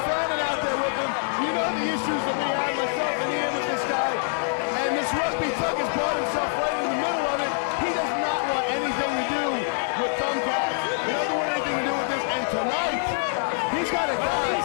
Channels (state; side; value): silent; right; 62 dB below the other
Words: Fannin out there with him, you know the issues that we have, myself and Ian, with this guy, and this Rugby Thug has brought himself right in the middle of it. He does not want anything to do with thumbtacks. He doesn't want anything to do with this, and tonight, he's got a guy. Well,